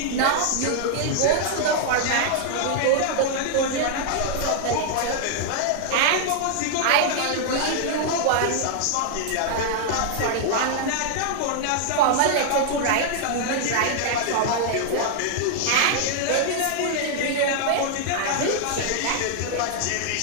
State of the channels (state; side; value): different; both; correlation -0.01